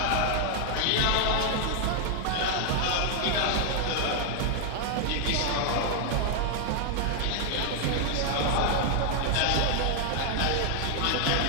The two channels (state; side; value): different; both; correlation 0.00